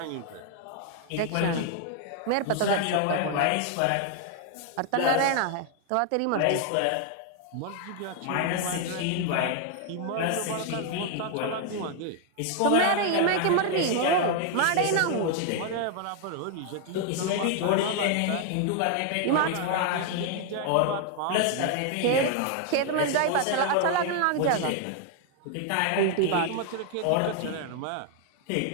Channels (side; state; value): both; different; correlation 0.00